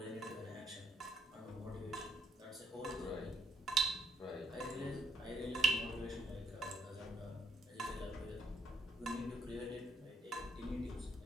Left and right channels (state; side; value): normal; both; correlation 0.70